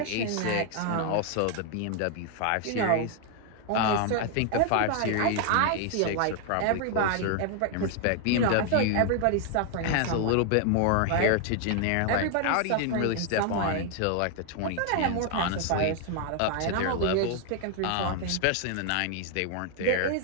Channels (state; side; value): different; both; correlation 0.00